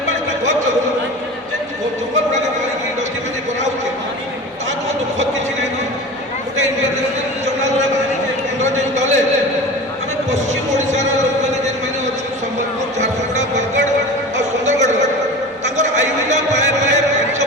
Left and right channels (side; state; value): both; normal; correlation 0.33